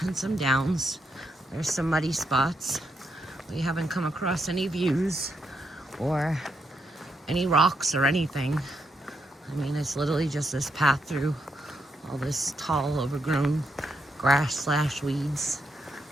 and some downs. There's some muddy spots. We haven't come across any views or any rocks or anything. I mean, it's literally just this path through all this tall, overgrown grass / weeds.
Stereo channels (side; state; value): both; normal; correlation 0.80